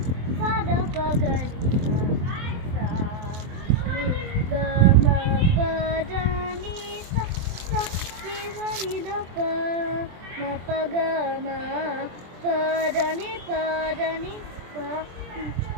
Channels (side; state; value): left; late; 23 ms